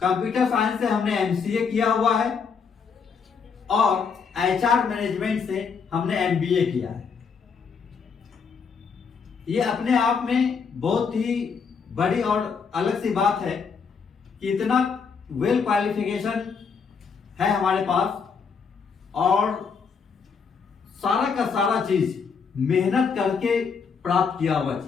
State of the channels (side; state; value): right; quieter; 5.8 dB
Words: कंप्यूटर साइंस से हमने एमसीए किया हुआ है, और एचआर मैनेजमेंट से हमने एमबीए किया है। ये अपने आप में बहुत ही बड़ी और अलग सी बात है कि इतना वेल क्वालिफिकेशन है हमारे पास, और सारा का सारा चीज मेहनत करके प्राप्त किया हुआ